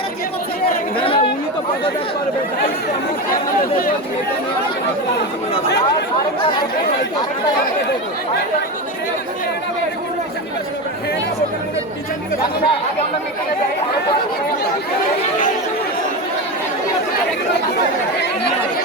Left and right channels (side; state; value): both; normal; correlation 0.19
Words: উনি তো পদত্যাগ করবে। আগে আমরা মিটিংয়ে যাই।